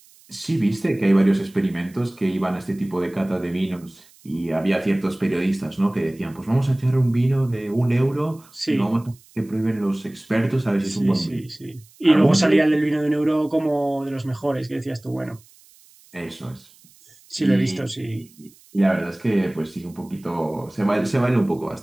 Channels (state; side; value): noise; right; hiss, 27 dB below the sound